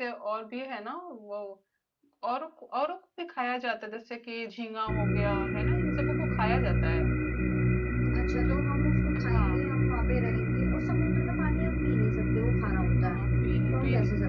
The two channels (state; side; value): identical; both; correlation 1.00